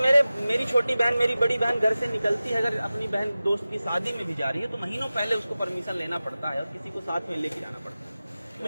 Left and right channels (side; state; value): both; inverted; correlation -0.96